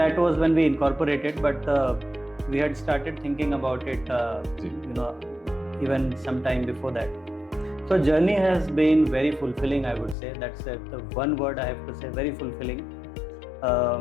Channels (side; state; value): right; drops out; at 10.2 s